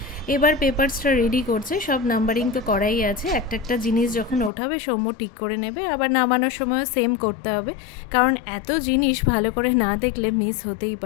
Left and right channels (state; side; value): drops out; right; at 4.5 s